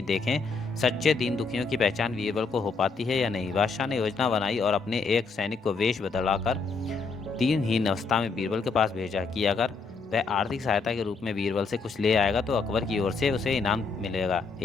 देखें सच्चे दीन दुखियों की पहचान बीरबल को हो पाती है या नहीं। बादशाह ने योजना बनाई और अपने एक सैनिक को वेश बदलाकर दिनहीन अवस्था में बीरबल के पास भेजा कि अगर वह आर्थिक सहायता के रूप में बीरबल से कुछ ले आएगा तो अकबर की ओर से उसे इनाम मिलेगा।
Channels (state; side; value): quieter; right; 4.5 dB